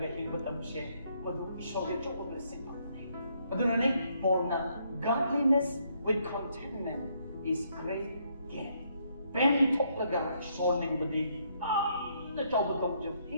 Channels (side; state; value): both; inverted; correlation -0.72